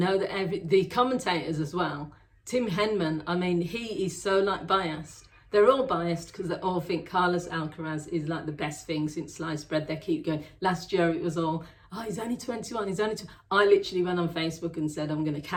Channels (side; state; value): both; identical; correlation 1.00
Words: that the commentators as well, Tim Henman, I mean, he is so biased. They're all biased because they all think Carlos Alcaraz is the best thing since sliced bread. They keep going. Last year it was all, oh, he's only 21, he's only 20. I literally went on Facebook and said, I'm going to